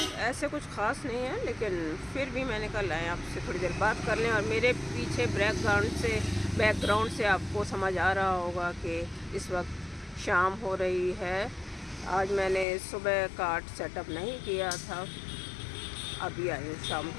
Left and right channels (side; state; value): right; drops out; at 12.7 s